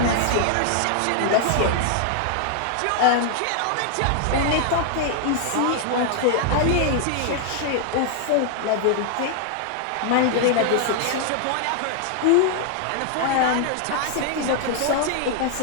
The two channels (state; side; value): different; both; correlation 0.00